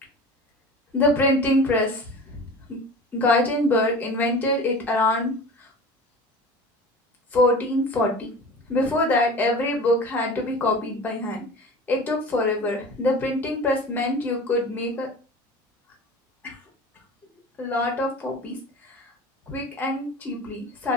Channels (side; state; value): both; normal; correlation 0.37